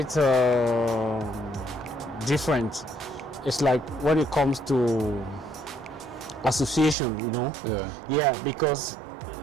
different. It's like when it comes to association, you know. Yeah, because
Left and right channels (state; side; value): drops out; left; at 7.0 s